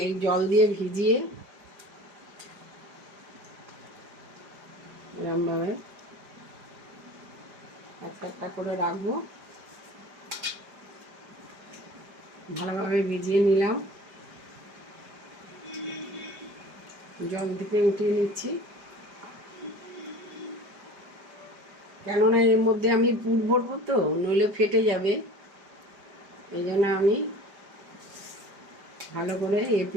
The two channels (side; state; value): left; late; 5.0 ms